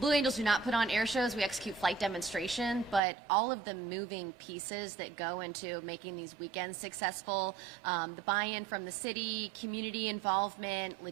Angels do not put on air shows. We execute flight demonstration, but all of the moving pieces that go into making these weekends successful, the buy-in from the city, community involvement,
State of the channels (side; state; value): left; drops out; at 3.0 s